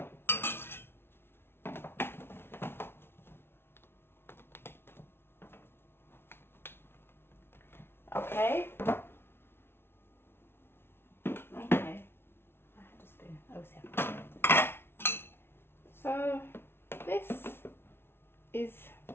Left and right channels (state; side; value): late; right; 0.12 ms